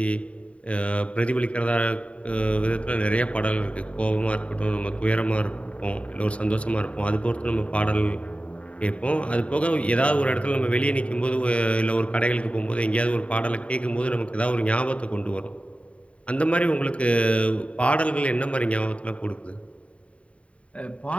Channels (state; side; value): late; right; 0.064 ms